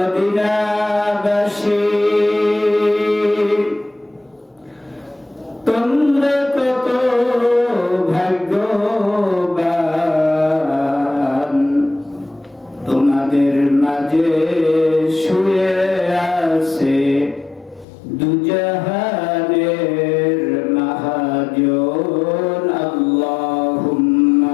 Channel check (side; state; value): right; drops out; at 17.9 s